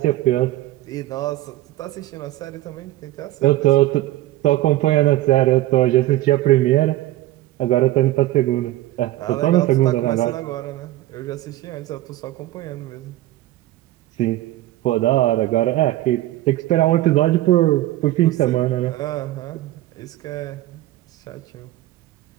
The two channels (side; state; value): left; quieter; 15.9 dB